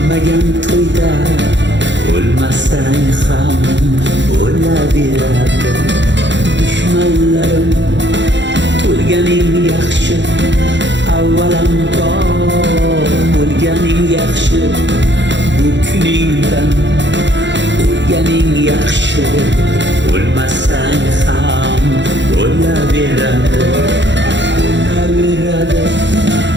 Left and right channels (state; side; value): late; left; 0.53 ms